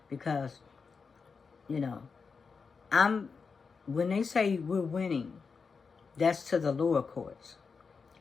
because, when they say we're winning, that's to the lower courts.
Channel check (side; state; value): right; quieter; 5.2 dB